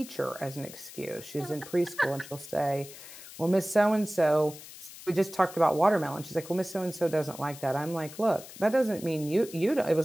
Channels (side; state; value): left; noise; hiss, 16 dB below the sound